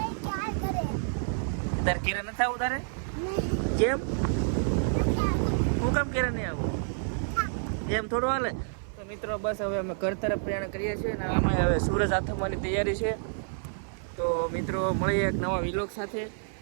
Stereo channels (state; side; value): silent; left; 56 dB below the other